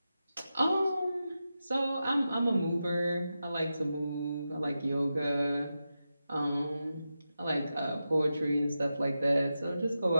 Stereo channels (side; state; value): both; inverted; correlation -0.91